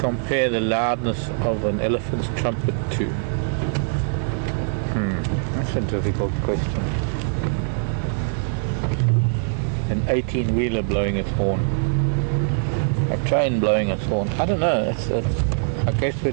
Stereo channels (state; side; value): silent; left; 64 dB below the other